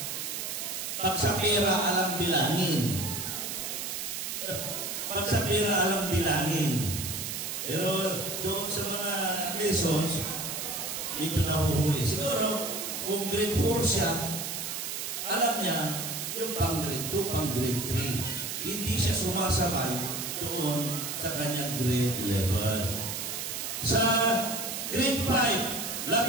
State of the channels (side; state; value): right; noise; hiss, 4 dB below the sound